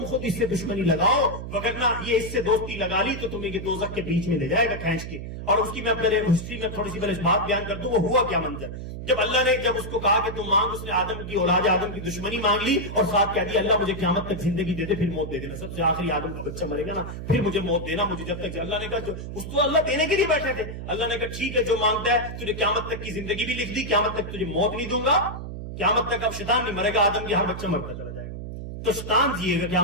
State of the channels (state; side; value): noise; right; hum, 8 dB below the sound